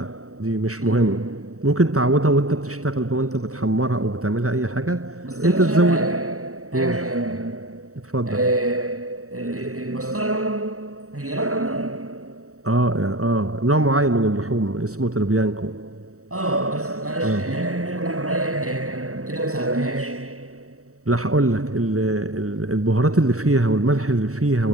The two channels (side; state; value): left; late; 0.65 ms